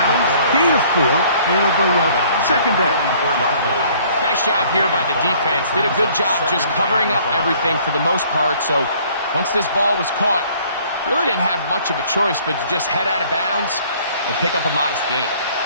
Gain of 4. And it'll bring up 2nd down. Nice job here by the defense. Did a good job just covering up everything for the most part. So once this ball was caught, really didn't have much of a choice but to just head out of bounds and pick up a modest gain.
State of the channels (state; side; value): inverted; both; correlation -0.57